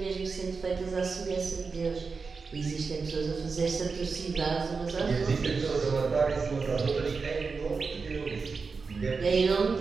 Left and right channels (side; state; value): left; quieter; 4.7 dB